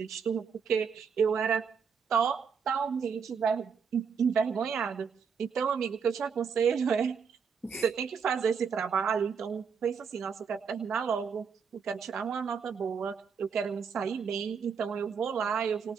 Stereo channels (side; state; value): left; quieter; 6.4 dB